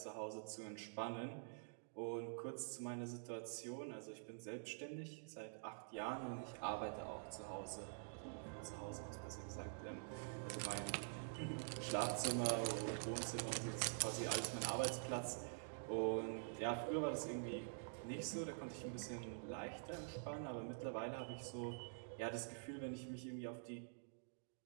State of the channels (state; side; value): silent; left; digital silence